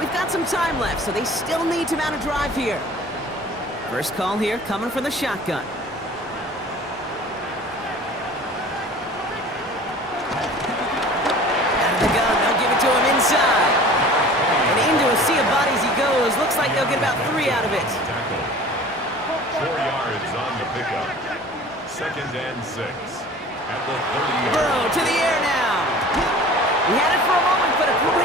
got some time left, so they still need to mount a drive here. First call here coming from the shotgun. Out of the gun, they'll give it to him inside. And into a sea of bodies he goes. Looks like they'll get about 3 out of it. 4 yards on the pickup. 2nd and 6. At the 30-yard. Burrow to the air now. He had it for a moment, but a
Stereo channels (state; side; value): normal; both; correlation 0.44